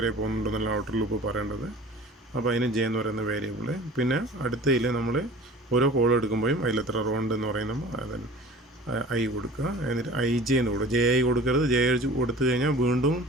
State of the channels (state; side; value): normal; both; correlation 0.43